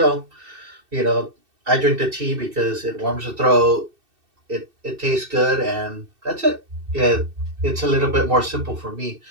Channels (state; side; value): late; left; 2.7 ms